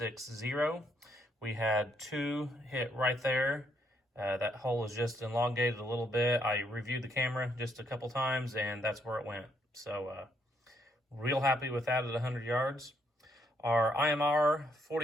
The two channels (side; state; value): both; normal; correlation 0.73